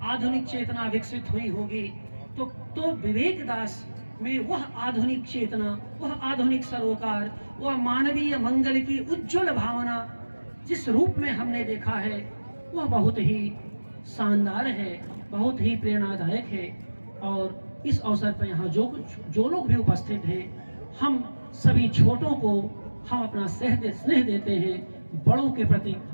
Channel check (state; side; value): inverted; both; correlation -1.00